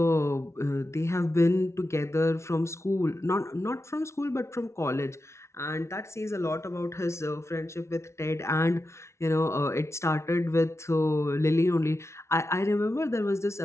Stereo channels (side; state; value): right; late; 0.13 ms